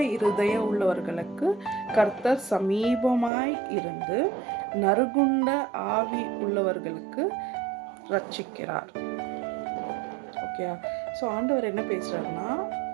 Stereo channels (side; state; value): left; drops out; at 3.3 s